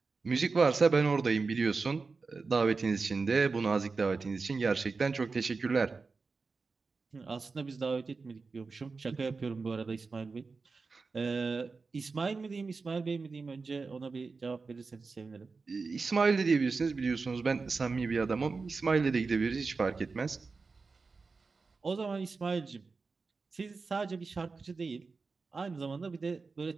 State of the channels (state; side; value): quieter; left; 4.4 dB